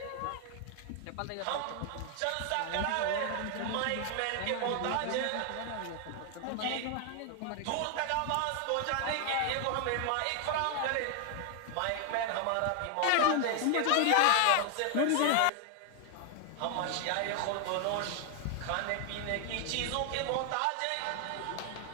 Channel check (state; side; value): different; both; correlation 0.00